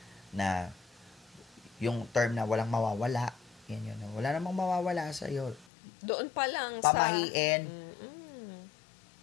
na yung term na walang mawawala. Yan yun. Wala namang mawawala sa iyo. Doon pa lang Pamahiin.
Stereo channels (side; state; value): right; drops out; at 5.7 s